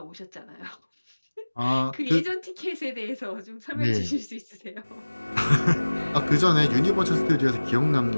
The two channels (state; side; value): inverted; both; correlation -1.00